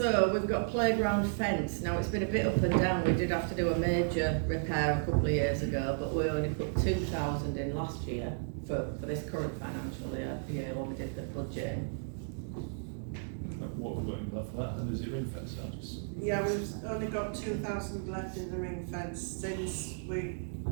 we've got playground fence. Now it's been a bit up and down. We did have to do a major repair a couple of years ago, but we only put 2,000 in last year for this current financial year when we did the budget. What have we got in that for that? And is it ring fence? I'll just. Yeah, we've only got 2,000 left in the ring fence since we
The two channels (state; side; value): silent; left; digital silence